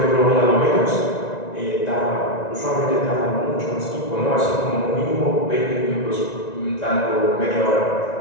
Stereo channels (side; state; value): right; late; 1.9 ms